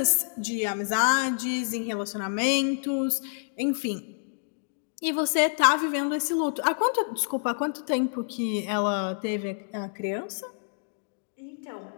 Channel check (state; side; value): silent; right; digital silence